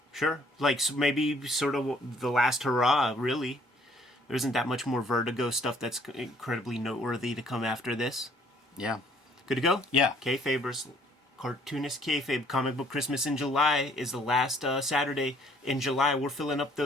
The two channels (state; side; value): normal; both; correlation 0.61